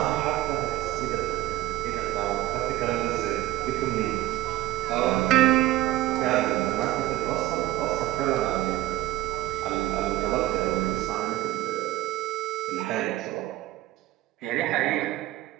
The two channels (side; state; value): left; quieter; 15.7 dB